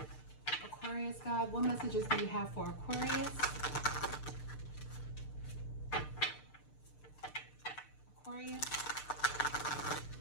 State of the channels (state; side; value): late; right; 6.7 ms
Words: Aquarius, God, what messages do you have for Aquarius? Aquarius.